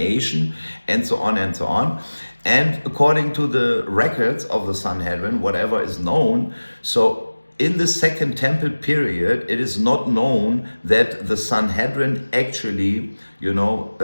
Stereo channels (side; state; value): both; inverted; correlation -1.00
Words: and so on and so on. And according to the records of the Sanhedrin, whatever is known, so in the Second Temple period, it is not known that the Sanhedrin actually,